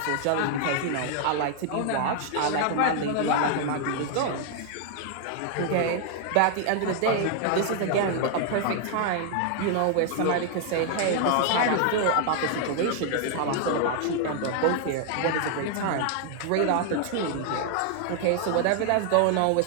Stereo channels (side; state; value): both; different; correlation 0.00